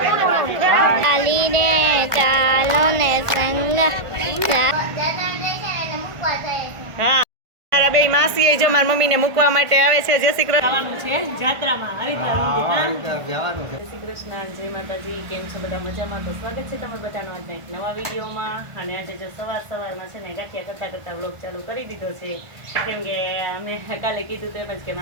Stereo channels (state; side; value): late; left; 1.5 ms